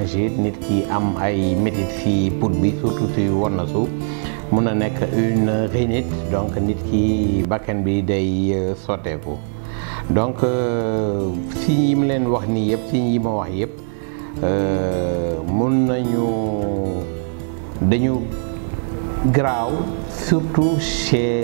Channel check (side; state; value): left; silent; digital silence